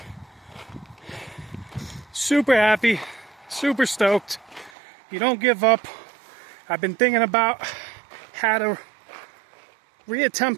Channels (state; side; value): drops out; left; at 4.7 s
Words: Super happy, super stoked. You don't give up. I've been thinking about how to